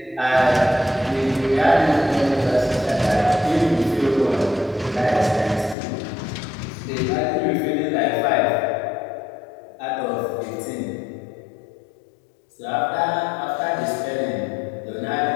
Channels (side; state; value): right; drops out; at 5.8 s